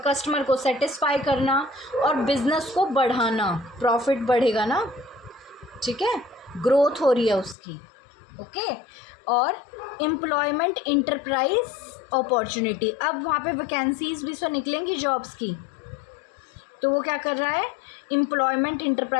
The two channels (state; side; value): drops out; right; at 7.6 s